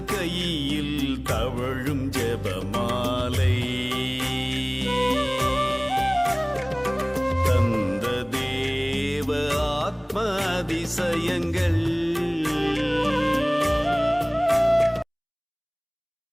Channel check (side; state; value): both; identical; correlation 1.00